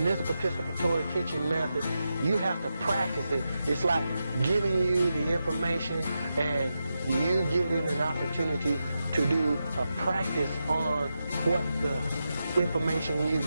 this participatory teaching method, you have to practice it. It's like giving you the information and you getting an opportunity to do a practice on what the information you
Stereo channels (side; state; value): both; inverted; correlation -0.88